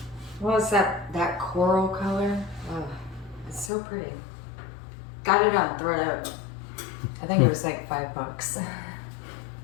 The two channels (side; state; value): right; drops out; at 3.7 s